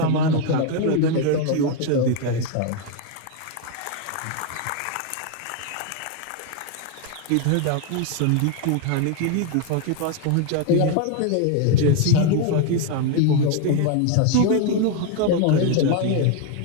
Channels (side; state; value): both; different; correlation 0.01